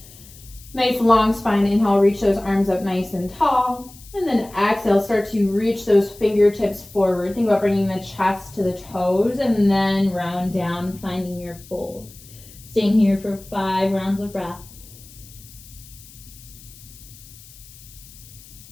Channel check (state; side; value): noise; left; hiss, 21 dB below the sound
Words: Nice long spine. Inhale, reach those arms up nice and tall. And then exhale, start to reach those fingertips forward. Think about bringing the chest to the toes and then round down, finding your fold. Staying here for 5 rounds of breath.